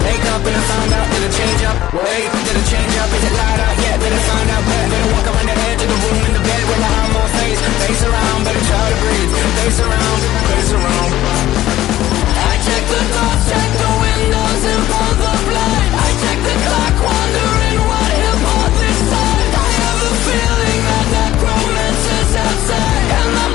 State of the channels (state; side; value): quieter; right; 14.3 dB